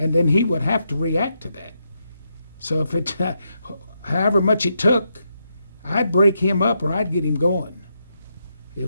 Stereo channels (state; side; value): inverted; both; correlation -0.82